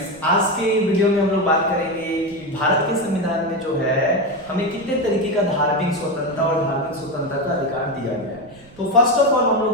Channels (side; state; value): right; noise; rumble, 24 dB below the sound